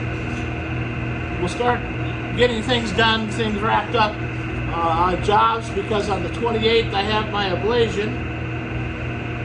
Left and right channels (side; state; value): both; identical; correlation 1.00